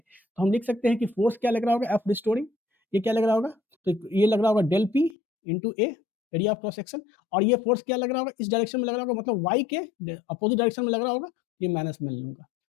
हम लिख सकते हैं कि फोर्स क्या लग रहा होगा, एफ रिस्टोरिंग, ये क्या लग रहा होगा, तो ये लग रहा होगा del P into a area of cross section, और ये फोर्स क्या लग रहा होगा, इस डायरेक्शन में लग रहा होगा, मतलब वाई के अपोजिट डायरेक्शन में लग रहा होगा, ये माइनस में लूंगा,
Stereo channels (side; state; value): right; drops out; at 5.2 s